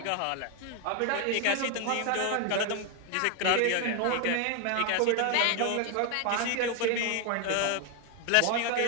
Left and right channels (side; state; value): both; different; correlation 0.01